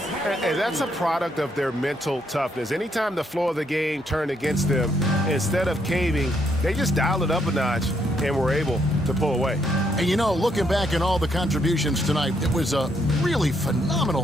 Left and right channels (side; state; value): both; normal; correlation 0.74